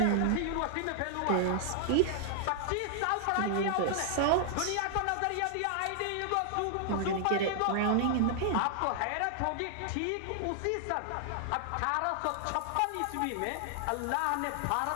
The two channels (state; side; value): different; both; correlation 0.00